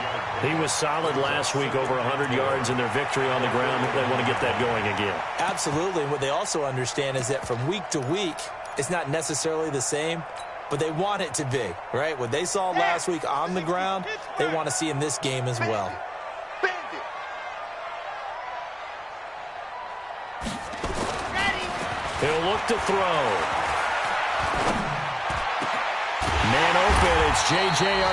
He was solid last week, over 100 yards in their victory on the ground. They want to get that going again. Absolutely. What they also understand is that from week to week, it's not necessarily the same, but they want it to be, right? What they saw last week on the ground, they want to see in this game as well. He'll look to throw. Man open, it's J.J.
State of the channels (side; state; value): both; identical; correlation 1.00